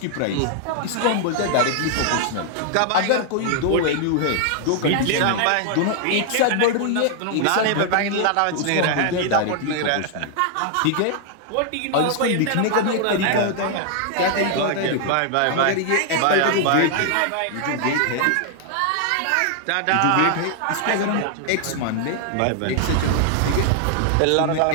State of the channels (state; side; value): different; both; correlation 0.00